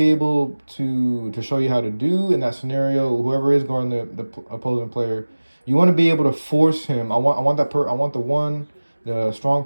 able to show you how to do in that scenario, whoever is guarding the opposing player, you want to be able to force him. I want the strong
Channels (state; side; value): inverted; both; correlation -1.00